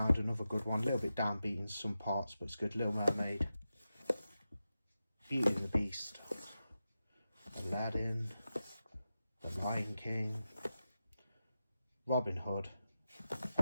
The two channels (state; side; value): inverted; both; correlation -0.91